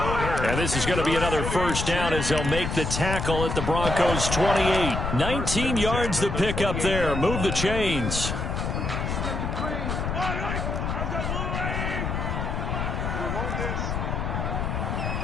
And this is going to be another 1st down as they'll make the tackle at the Broncos' 28. 19 yards the pick up there. Move the chains.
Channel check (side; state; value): left; noise; rumble, 2 dB below the sound